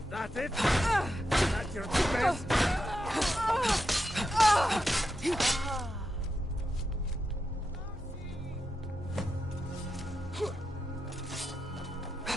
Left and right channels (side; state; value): both; normal; correlation 0.87